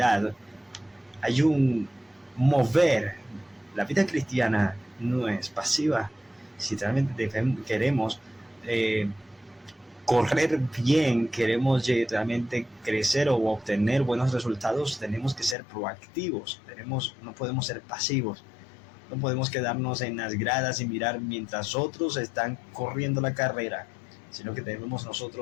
hay un mover. La vida cristiana no es pasiva. Si realmente queremos correr bien, queremos realmente crecer o obtener buenos resultados, tenemos que ser proactivos. No podemos ser pasivos. No podemos quedarnos en las gradas y mirar mientras otros están corriendo la carrera, sino que debemos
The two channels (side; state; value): right; drops out; at 15.6 s